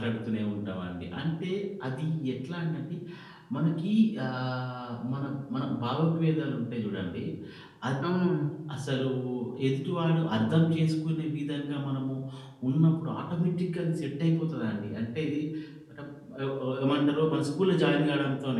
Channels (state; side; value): identical; both; correlation 1.00